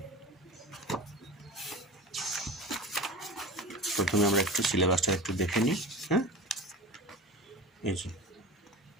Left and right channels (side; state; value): both; normal; correlation 0.33